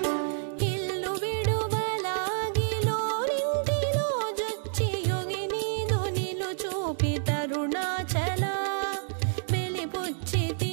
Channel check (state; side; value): silent; left; digital silence